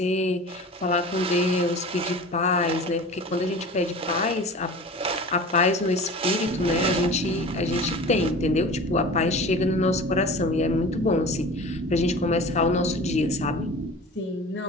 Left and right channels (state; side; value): normal; both; correlation 0.38